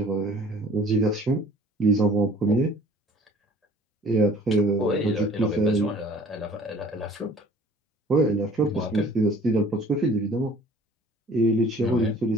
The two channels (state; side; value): normal; both; correlation 0.52